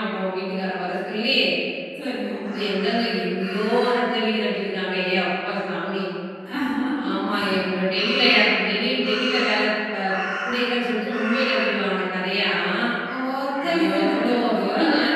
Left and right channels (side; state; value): both; identical; correlation 1.00